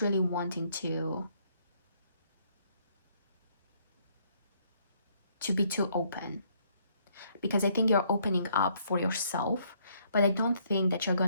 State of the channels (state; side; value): inverted; both; correlation -0.68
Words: wanting to be too open, because I think you're opening up for yourself, but I don't think that you're